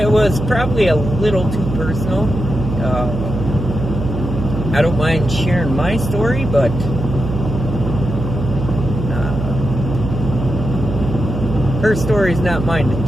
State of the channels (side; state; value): right; noise; hum, 4 dB below the sound